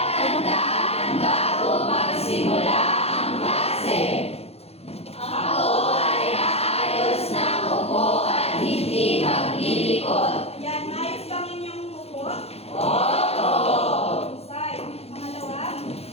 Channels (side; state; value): right; late; 0.29 ms